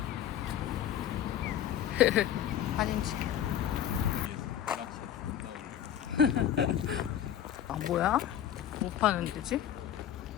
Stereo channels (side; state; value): right; quieter; 10.5 dB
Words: 사진 찍게. 아 뭐야? 못 파는 데지?